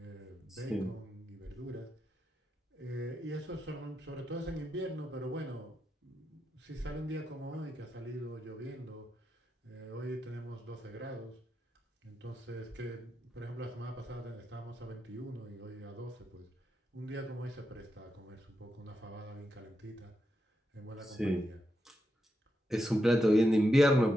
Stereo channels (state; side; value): normal; both; correlation 0.85